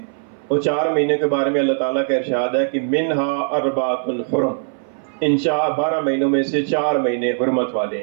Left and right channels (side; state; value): left; silent; 60 dB below the other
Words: وہ 4 مہینے کے بارے میں اللہ تعالیٰ کا ارشاد ہے کہ منہا 4 حرم، ان 12 مہینوں میں سے 4 مہینے حرمت والے